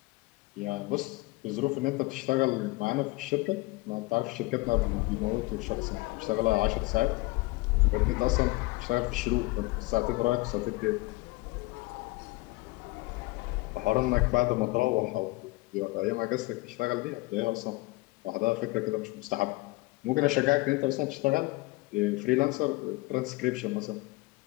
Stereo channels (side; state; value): right; quieter; 22.4 dB